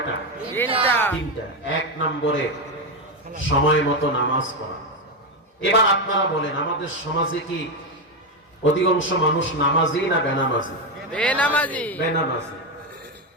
তিনটা। এক নম্বরে সময় মতো নামাজ পড়া। এবার আপনারা বলেন আমাদের সমাজে কি অধিকাংশ মানুষ নামাজি না বেনামাজি? বেনামাজি।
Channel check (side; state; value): both; normal; correlation 0.09